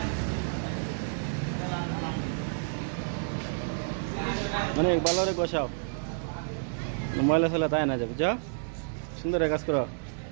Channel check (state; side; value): silent; left; digital silence